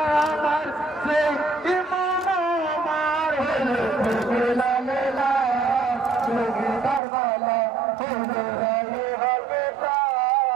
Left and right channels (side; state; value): left; drops out; at 7.0 s